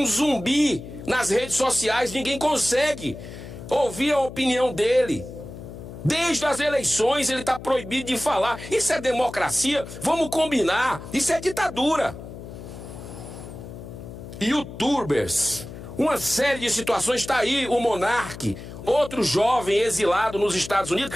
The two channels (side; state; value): left; noise; hum, 13 dB below the sound